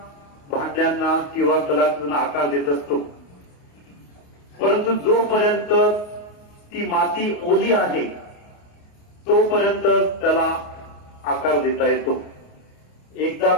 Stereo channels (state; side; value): late; right; 28 ms